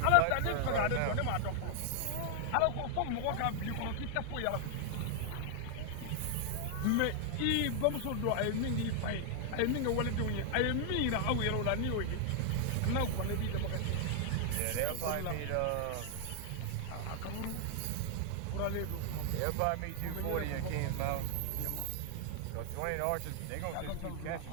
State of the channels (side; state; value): both; different; correlation 0.00